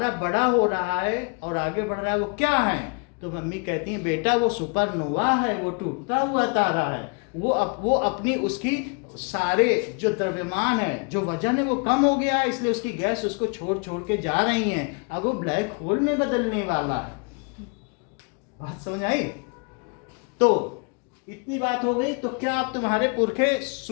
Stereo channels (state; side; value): quieter; right; 35.4 dB